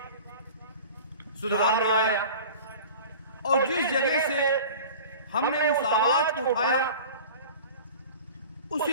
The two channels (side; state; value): both; inverted; correlation -0.39